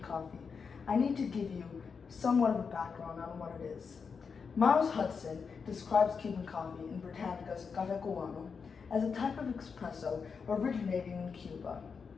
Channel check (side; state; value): right; quieter; 5.6 dB